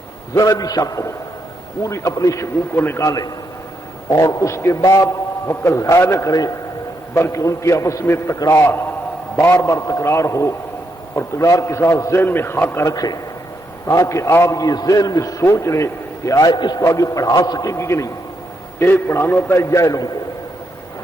ذرا بھی شک ہو پوری اپنے شکوک کو نکالیں اور اس کے بعد وقت ضائع نہ کریں بلکہ ان کی آپس میں تکرار بار بار تکرار ہو اور تکرار کے ساتھ ذہن میں خاکہ رکھیں تاکہ آپ یہ ذہن میں سوچ لیں کہ آئے اس کو آگے پڑھا سکیں گے کہ نہیں. ایک پڑھانا ہوتا ہے جاہلوں کو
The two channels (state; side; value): normal; both; correlation 0.80